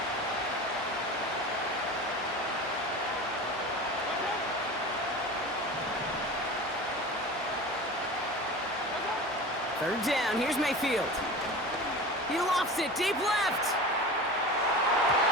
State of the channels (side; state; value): both; normal; correlation 0.33